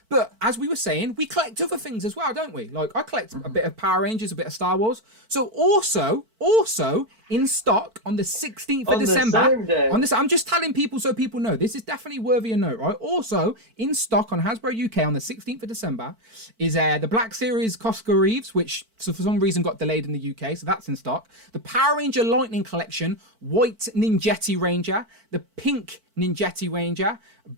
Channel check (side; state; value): left; late; 4.5 ms